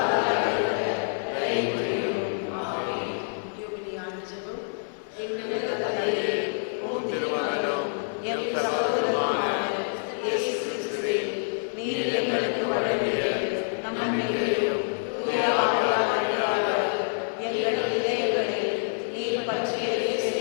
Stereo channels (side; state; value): right; silent; 60 dB below the other